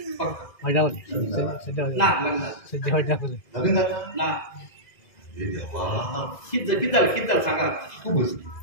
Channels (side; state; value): right; late; 2.0 ms